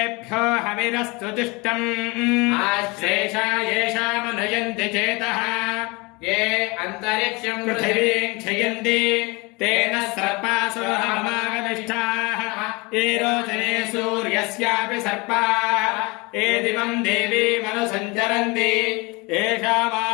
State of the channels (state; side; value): quieter; right; 26.3 dB